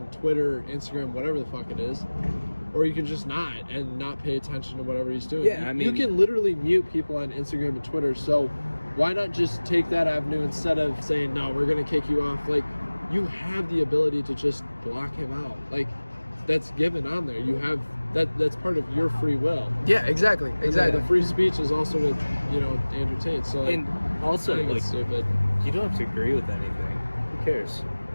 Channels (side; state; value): both; inverted; correlation -1.00